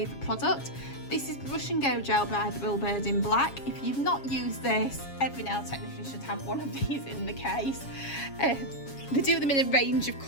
product. This is Brush and Go Gel by Thrillbird in black. If you've not used this, every nail technician should have one of these in the case. They do them in a range of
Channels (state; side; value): late; right; 7.3 ms